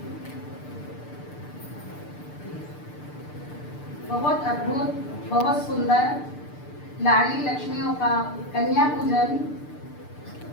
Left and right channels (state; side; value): late; right; 6.8 ms